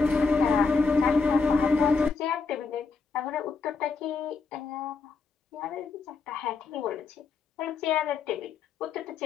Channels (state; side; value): quieter; right; 4.6 dB